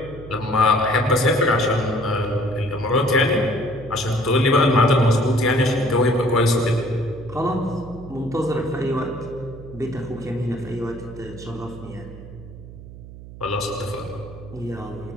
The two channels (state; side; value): noise; right; hum, 15 dB below the sound